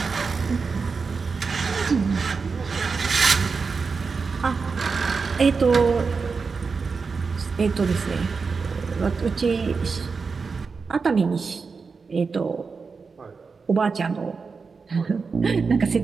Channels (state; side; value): quieter; left; 4.9 dB